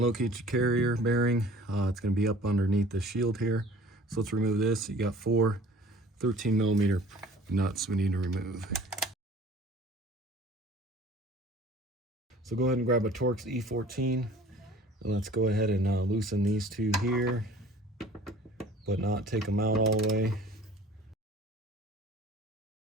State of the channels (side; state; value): both; normal; correlation 0.48